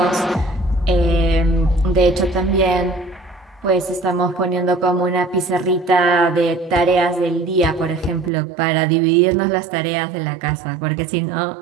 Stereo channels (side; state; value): left; drops out; at 8.3 s